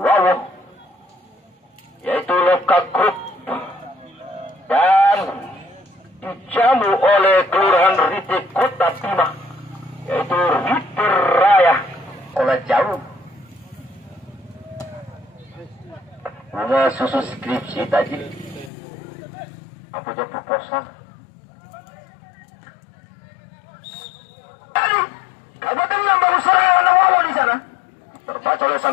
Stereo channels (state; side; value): drops out; right; at 18.7 s